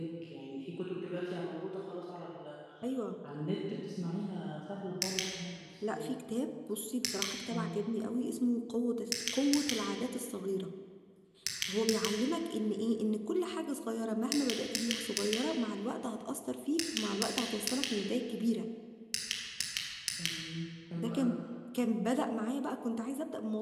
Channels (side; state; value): both; identical; correlation 1.00